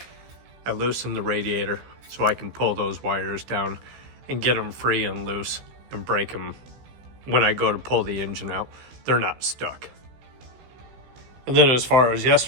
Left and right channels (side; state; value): left; late; 15 ms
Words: I loosened the radiator so I can pull those wires down and get them free and loose and break them when I go to pull the engine out. They're not stuck. And then as far as